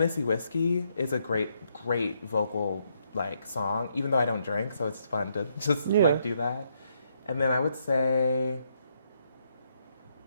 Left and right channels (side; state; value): both; inverted; correlation -0.76